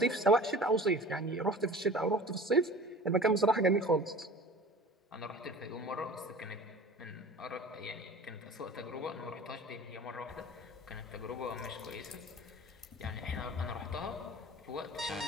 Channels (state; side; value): normal; both; correlation 0.40